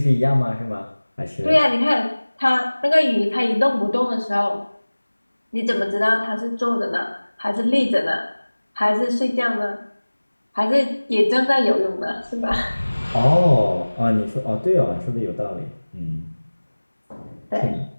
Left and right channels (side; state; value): both; inverted; correlation -1.00